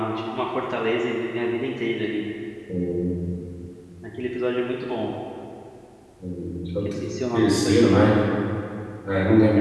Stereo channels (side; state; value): both; identical; correlation 1.00